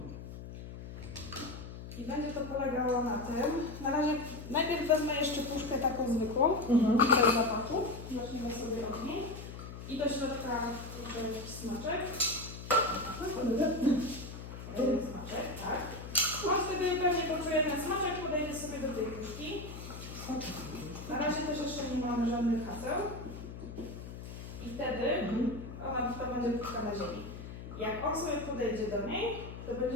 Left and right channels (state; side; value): noise; left; hum, 11 dB below the sound